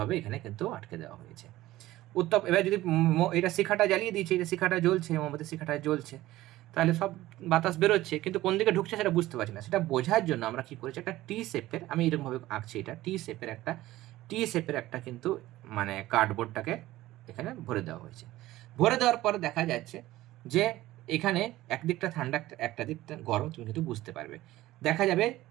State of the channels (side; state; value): left; quieter; 16.4 dB